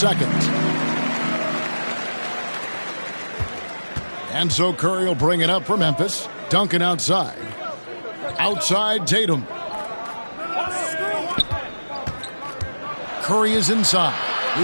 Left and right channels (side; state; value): both; inverted; correlation -1.00